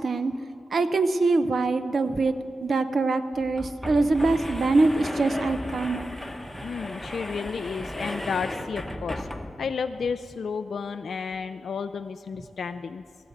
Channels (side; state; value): both; normal; correlation 0.90